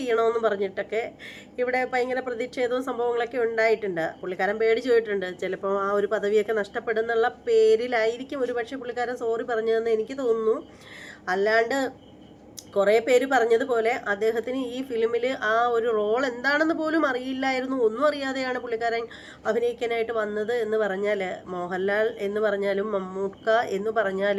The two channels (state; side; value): identical; both; correlation 1.00